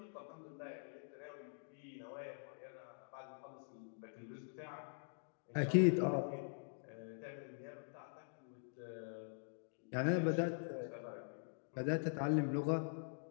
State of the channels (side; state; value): right; silent; digital silence